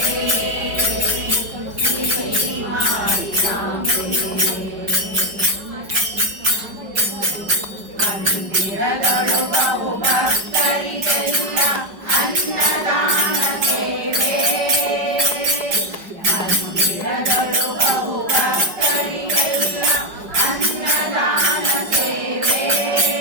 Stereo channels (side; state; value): left; late; 5.1 ms